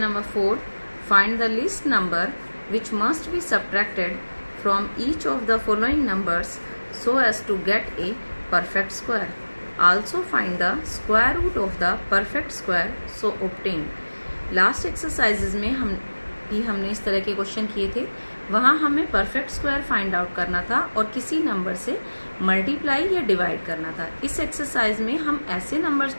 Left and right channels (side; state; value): both; inverted; correlation -1.00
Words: number 4, find the least number which must be subtracted from each of the following numbers so as to get a perfect square. Also find the square root of the perfect square so obtain. Last exercises में हमने इस तरह के question किए थे। वहाँ हमें perfect square find out करना था और किसी नंबर से मल्टीप्लाई या डिवाइड करना था। इस एक्सरसाइज में हम ऐसे नंबर्स